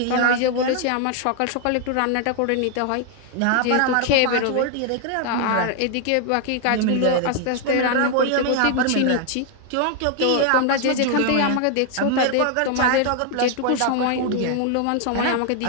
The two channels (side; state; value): both; different; correlation 0.00